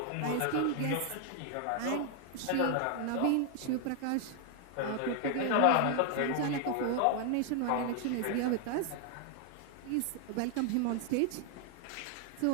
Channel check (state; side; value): different; both; correlation 0.00